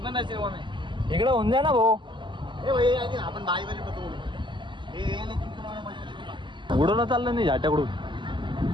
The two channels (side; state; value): left; late; 0.23 ms